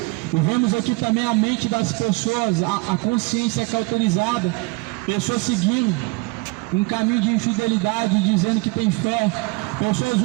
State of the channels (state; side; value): quieter; left; 26.1 dB